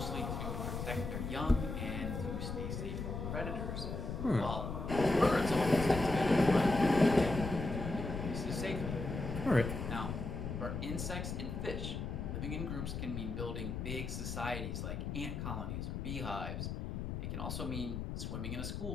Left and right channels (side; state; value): left; noise; rumble, 4 dB below the sound